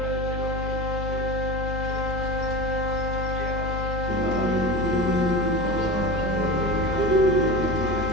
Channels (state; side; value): noise; left; hum, 4 dB below the sound